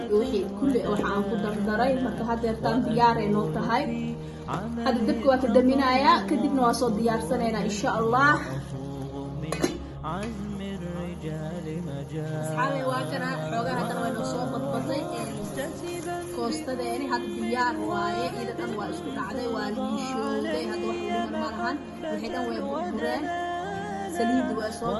wixii kulli waxaan ku dardaray marka hadeertaan diyaareen oo tahay hadda dabka waa ka daminayaa kadibna waa soo diyaarsanayna insha Allah asxaabi waa kana xoogaa hadda way noo soo badbatay koostadeeni hadda diyaar waaye ida dhan waa isku dhacday waa liishowday hadda wax u dhiman ma lahan wixii dhan way burbureen saliid waa soo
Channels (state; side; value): identical; both; correlation 1.00